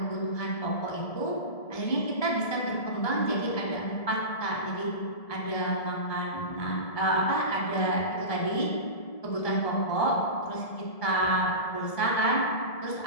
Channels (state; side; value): late; right; 1.7 ms